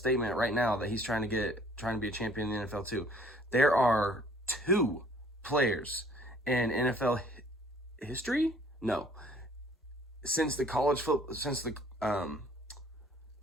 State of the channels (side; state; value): both; normal; correlation 0.56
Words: right now that he's trying to be a champion in the NFL too. There are two players in NFL history? No. Since the college football